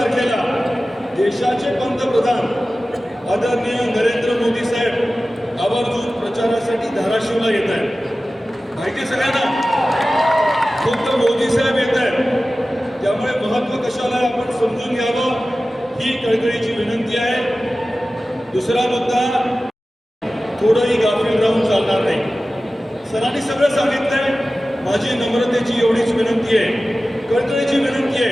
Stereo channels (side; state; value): both; normal; correlation 0.96